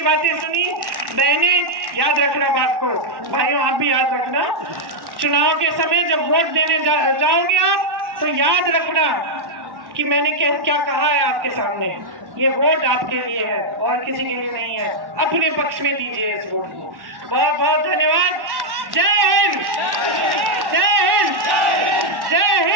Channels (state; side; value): late; left; 1.1 ms